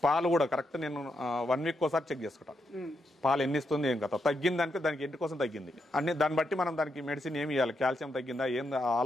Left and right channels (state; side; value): normal; both; correlation 0.82